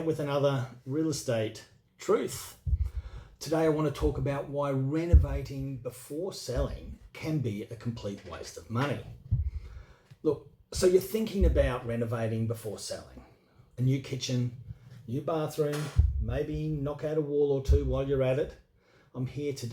with another real estate truth. Today I want to talk about why renovating before selling can be a complete waste of money. Look, so you're thinking about renovating before selling. A new kitchen, new bathroom, maybe knock out a wall or two while you're at it. I'm here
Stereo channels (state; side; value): identical; both; correlation 1.00